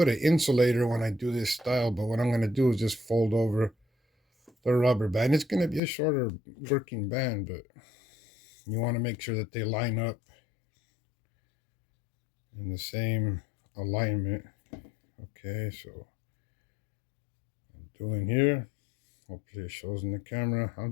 an insulator when I do this style, but what I'm going to do is just fold over the rubber band. It's going to be a shorter working band, but you want to make sure that they line up in the same alignment. Okay, so I'm doing here. Hopefully it shows in the camera. I'm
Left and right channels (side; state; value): right; drops out; at 5.8 s